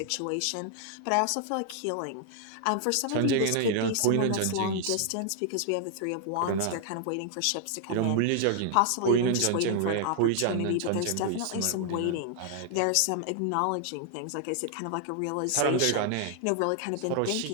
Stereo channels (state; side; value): different; both; correlation 0.00